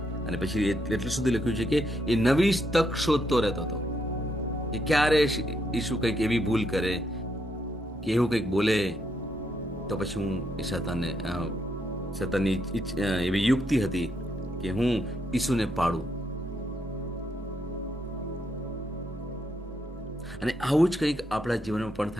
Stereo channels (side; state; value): both; normal; correlation 0.77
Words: અને પછી એટલું સુધી લખ્યું છે કે એ નવી તક શોધતો રહેતો હતો કે ક્યારે ઈસુ કંઈક એવી ભૂલ કરે કે એવું કંઈક બોલે તો પછી હું એ સતાનની એવી યુક્તિ હતી કે હું ઈસુને પાડું. અને આવું જ કંઈક આપણા જીવનમાં પણ